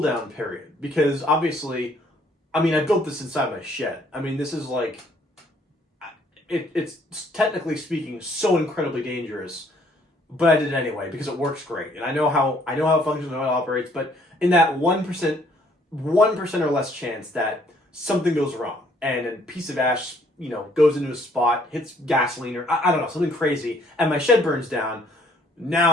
down period because obviously, I built this inside my shed. This is it's technically speaking so incredibly dangerous, but I did it anyway because it works great. And I know how it functions, I know how it operates, but in that 1% or less chance that something goes wrong and a piece of ash, goes into a spot, hits gasoline or I don't know, something crazy, and my shed burns down,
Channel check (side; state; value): both; normal; correlation 0.63